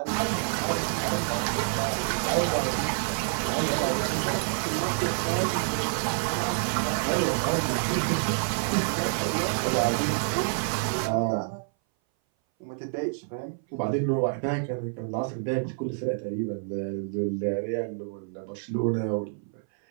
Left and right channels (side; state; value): left; silent; 58 dB below the other